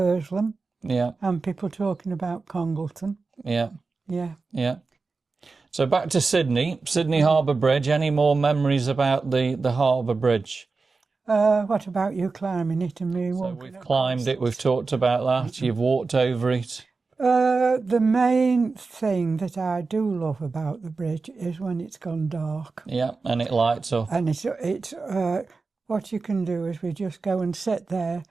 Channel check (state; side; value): quieter; left; 4.1 dB